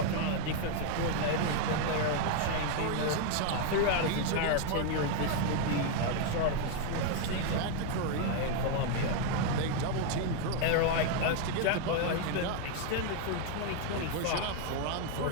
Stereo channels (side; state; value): both; different; correlation 0.00